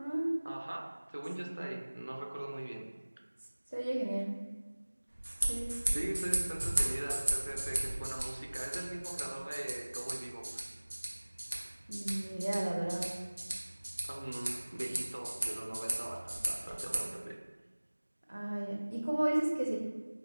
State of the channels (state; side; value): inverted; both; correlation -1.00